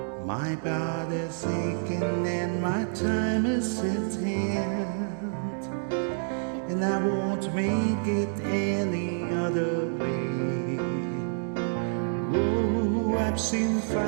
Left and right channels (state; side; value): silent; left; digital silence